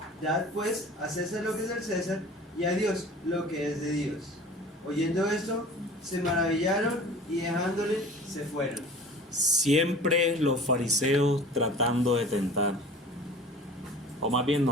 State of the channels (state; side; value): normal; both; correlation 0.42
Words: dad pues a César lo que es del César, y a Dios lo que es de Dios. Oyendo esto, se maravillaron y dejándole se fueron. Siempre los fariseos tratando de tentar, o más bien